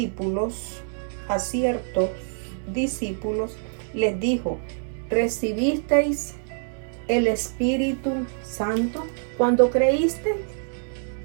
les dijo, ¿recibisteis el Espíritu Santo cuando creísteis?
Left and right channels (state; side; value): silent; left; digital silence